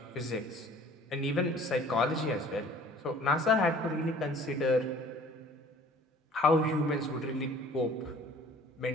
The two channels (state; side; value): normal; both; correlation 0.51